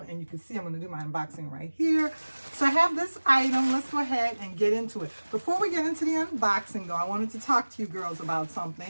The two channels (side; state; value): both; inverted; correlation -1.00